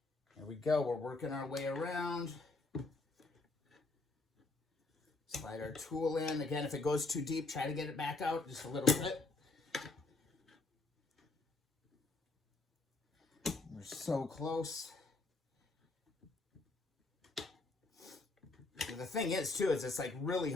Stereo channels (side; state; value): right; quieter; 3.4 dB